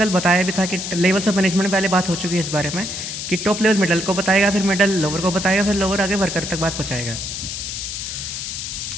बताया भी था कि लेवल्स ऑफ मैनेजमेंट में पहले बात हो चुकी है इस बारे में कि टॉप लेवल मिडल को बताएगा, फिर मिडल लोअर को बताएगा, फिर लोअर आगे वर्कर तक बात पहुँचाएगा।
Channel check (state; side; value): noise; left; hiss, 6 dB below the sound